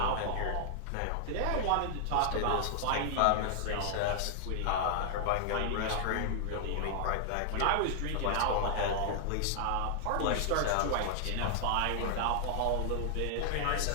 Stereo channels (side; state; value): both; different; correlation 0.00